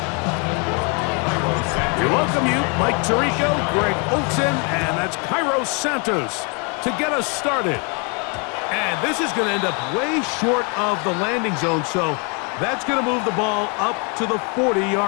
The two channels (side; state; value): right; quieter; 34.6 dB